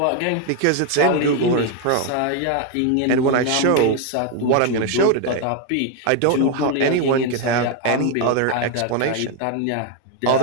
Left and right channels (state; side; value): different; both; correlation 0.01